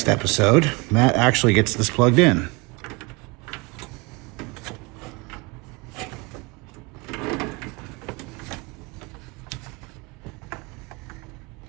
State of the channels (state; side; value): quieter; left; 27.3 dB